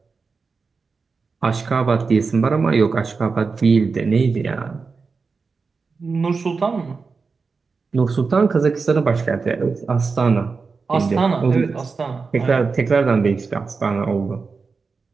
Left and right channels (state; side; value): quieter; left; 4.7 dB